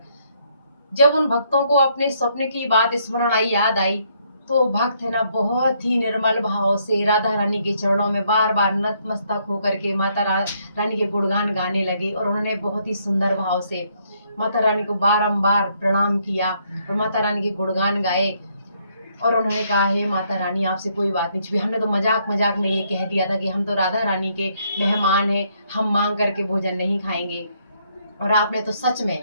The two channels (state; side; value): inverted; both; correlation -0.71